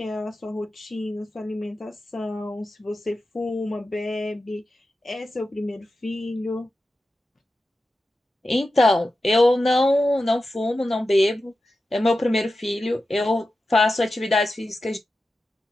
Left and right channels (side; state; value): both; normal; correlation 0.92